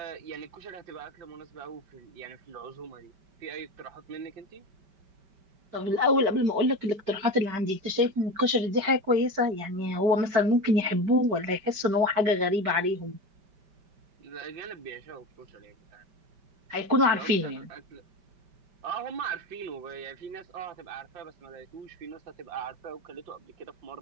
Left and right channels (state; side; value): late; left; 5.1 ms